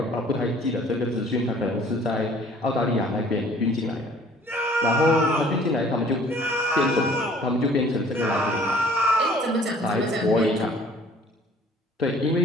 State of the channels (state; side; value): normal; both; correlation 0.54